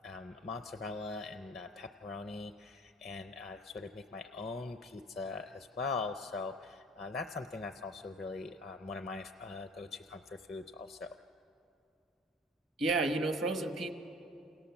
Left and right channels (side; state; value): both; normal; correlation 0.47